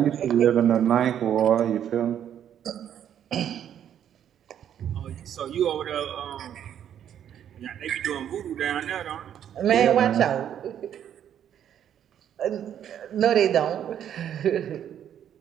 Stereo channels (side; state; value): left; quieter; 9.8 dB